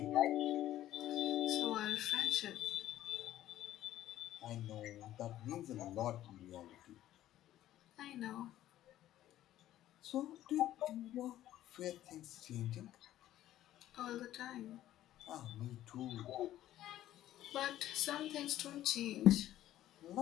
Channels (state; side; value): quieter; right; 13.3 dB